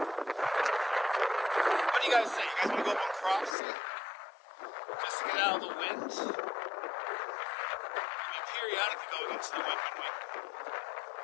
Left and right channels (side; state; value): right; drops out; at 3.6 s